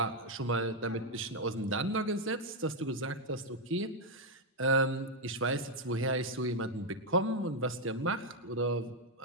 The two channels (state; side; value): normal; both; correlation 0.02